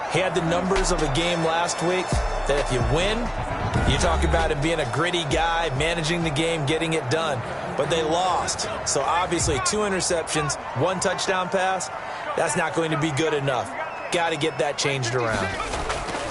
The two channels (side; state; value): both; identical; correlation 1.00